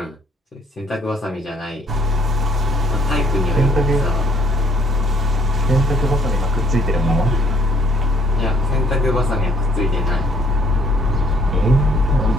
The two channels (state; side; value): normal; both; correlation 0.62